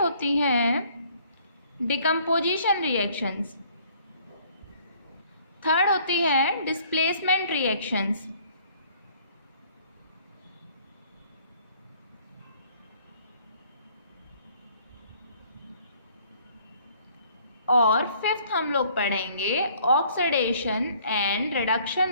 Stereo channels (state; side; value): inverted; both; correlation -0.59